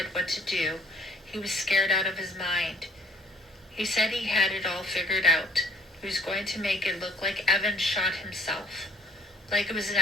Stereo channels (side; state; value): both; normal; correlation 0.57